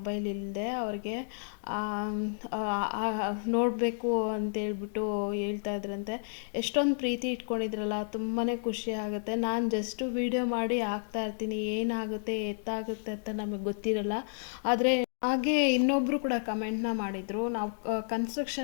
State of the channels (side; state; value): right; silent; digital silence